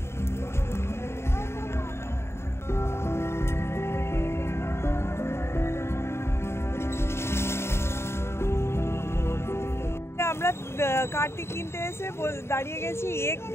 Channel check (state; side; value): late; right; 0.12 ms